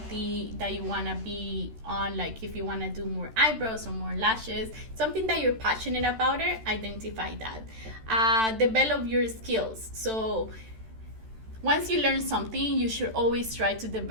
that you want to be on? Like if you want to do more eyebrows or more lashes, something that you're passionate about it, identify that. Develop your skills. So once you learn something, you should always try to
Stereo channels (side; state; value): left; late; 13 ms